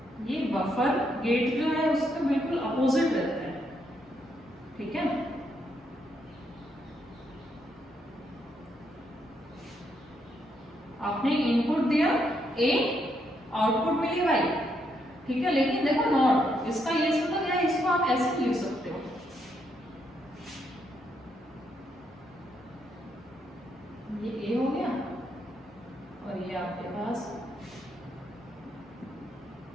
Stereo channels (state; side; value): normal; both; correlation 0.77